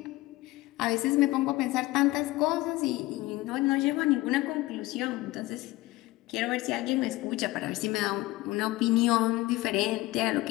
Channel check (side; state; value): right; quieter; 18.8 dB